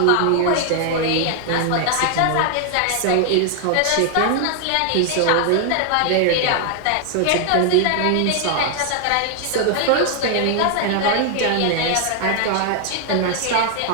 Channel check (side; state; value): both; different; correlation 0.00